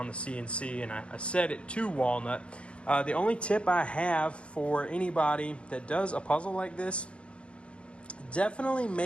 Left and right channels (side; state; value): right; late; 0.058 ms